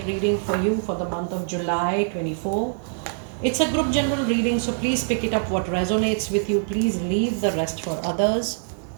reading for you for the month of July 24. It's a group general reading, so please pick it up what resonates with you. Please leave the rest for others.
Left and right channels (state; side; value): silent; left; digital silence